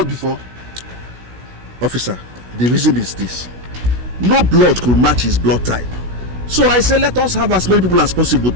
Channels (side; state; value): left; late; 16 ms